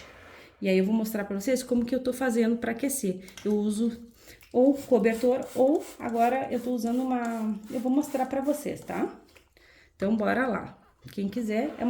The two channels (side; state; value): both; identical; correlation 1.00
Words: E aí eu vou mostrar pra vocês como que eu tô fazendo pra aquecer. Eu uso ou cobertor ou agora eu tô usando uma... Eu vou mostrar pra vocês, tá? Então bora lá. Quem quiser, é